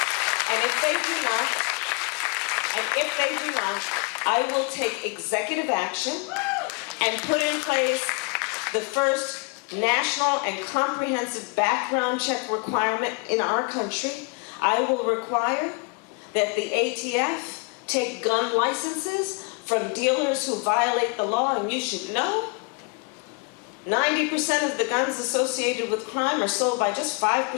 And if they do not, I will take executive action and put in place the first national and comprehensive background check requirement in our country. I will require that the ATF take gun licenses from dealers who violate the law, and you should know 90% of the guns associated with crime are sold by just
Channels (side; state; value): right; quieter; 31.9 dB